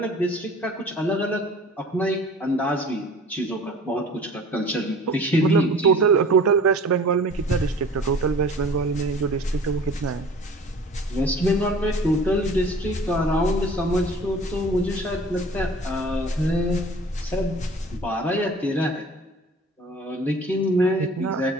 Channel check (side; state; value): both; normal; correlation 0.46